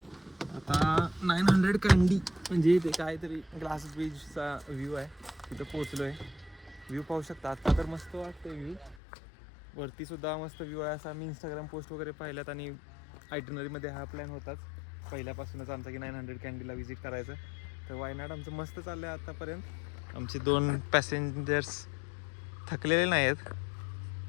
आता 900 कँडी म्हणजे ते काहीतरी ग्लास ब्रिजचा व्ह्यू आहे तिथं पोचलोय. व्ह्यू पाहू शकता. आता तर मस्त वाटतंय व्ह्यू. वरती सुद्धा मस्त व्ह्यू आहे. असा मी इंस्टाग्राम पोस्ट वगैरे पाहिल्यात आणि आयटनरीमध्ये हा प्लॅन होताच पहिल्यापासूनच आमचा की 900 कँडीला व्हिजिट करायचं. तर वायनाड आमचं मस्त चाललं आहे आत्तापर्यंत. आमचे 2 पॅसेंजर्स थकलेले नाही आहेत.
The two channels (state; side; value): drops out; right; at 9.0 s